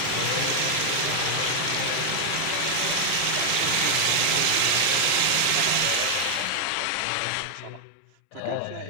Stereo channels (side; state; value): both; different; correlation 0.00